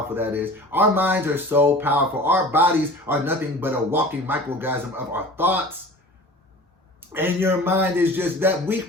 that is. Our minds are so powerful. Our bodies are nothing but a walking microorganism of our thoughts. And your mind is just that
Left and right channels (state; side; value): normal; both; correlation 0.40